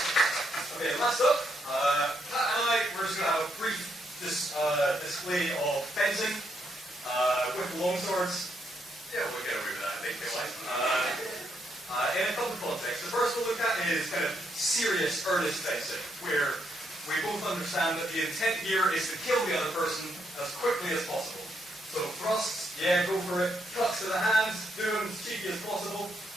display of fencing with longswords. Yeah, we'll get away with that, I think, in a couple of contexts. The first we'll look at is kind of serious, earnest fencing, where we both understand that the intent here is to kill the other person as quickly as possible. So thrusts, yeah, go for it. Cuts to the hands, do them as cheeky as possible.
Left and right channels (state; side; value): normal; both; correlation 0.77